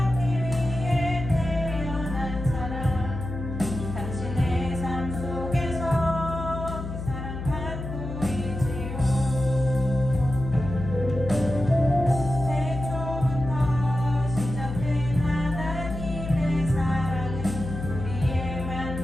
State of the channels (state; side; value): noise; left; hum, 7 dB below the sound